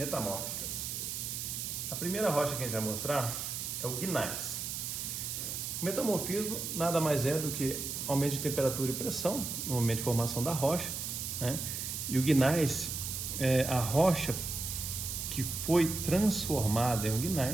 A primeira rocha que a gente vai mostrar é o gneiss. O metamorfismo nada mais é do que aumento de temperatura e pressão no momento de formação da rocha, né? E o gneiss é a rocha que foi transformada em um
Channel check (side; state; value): right; noise; hiss, 4 dB below the sound